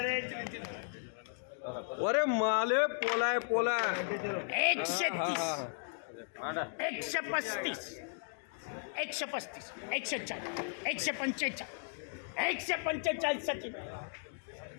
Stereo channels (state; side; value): silent; right; digital silence